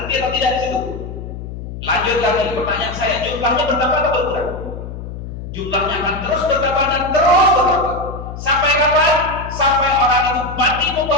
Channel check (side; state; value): left; noise; hum, 9 dB below the sound